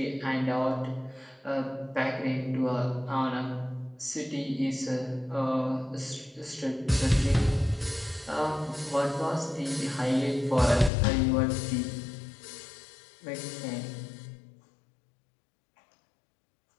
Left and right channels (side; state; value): right; drops out; at 10.9 s